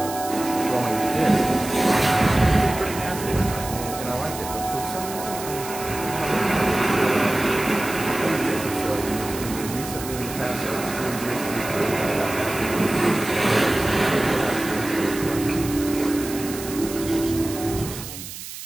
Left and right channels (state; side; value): noise; right; hiss, 11 dB below the sound